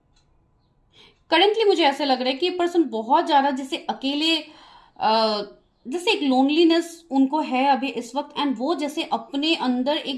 करंटली मुझे ऐसा लग रहा है कि ये पर्सन बहुत ज्यादा जैसे अकेले जैसे एक लोनलीनेस उनको है अभी इस वक्त, एंड वो जैसे अपने अंदर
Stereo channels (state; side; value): identical; both; correlation 1.00